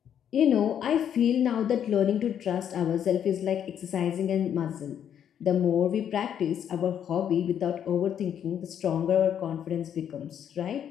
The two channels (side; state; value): right; quieter; 9.2 dB